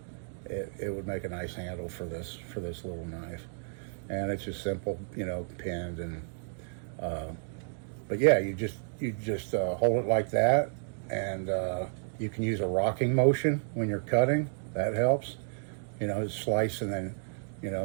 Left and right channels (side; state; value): left; silent; digital silence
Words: it would make a nice handle for this little knife. And it's just simple, you know, pinned and. But yeah, you just hold it like that, and you can use a rocking motion when you're cutting. That helps. You know, slice and then, you